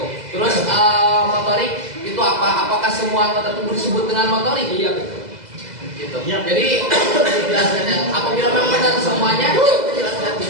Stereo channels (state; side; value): late; left; 2.0 ms